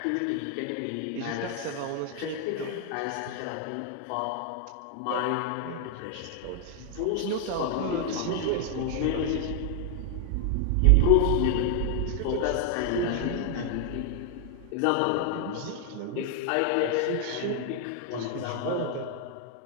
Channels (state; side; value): different; both; correlation 0.00